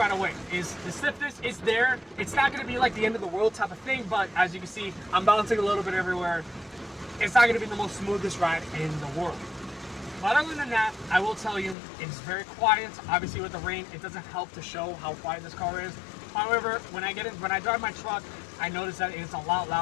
away is the stiffness is there. It's not going to be like the end of the world type of thing, but as you can see, I'm bouncing a little bit everywhere. It's not going to be the most smoothest ride in the world. But other than that, I will tell you, it's very quiet. Obviously with the rain, it doesn't help to show how quiet this car is. However, when I drive my truck, I notice that it's a lot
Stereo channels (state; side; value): drops out; right; at 11.8 s